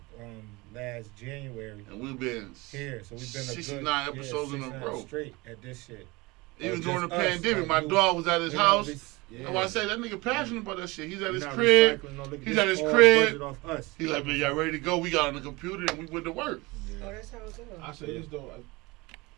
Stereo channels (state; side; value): quieter; left; 23.6 dB